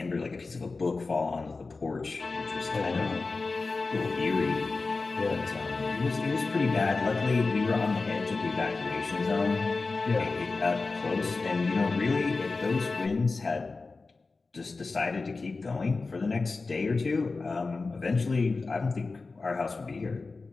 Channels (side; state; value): right; quieter; 3.9 dB